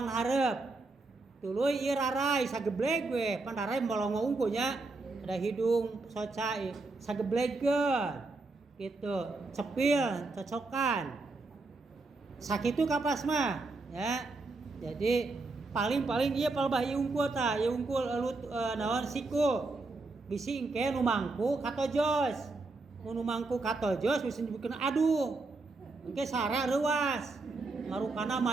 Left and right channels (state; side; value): quieter; left; 3.4 dB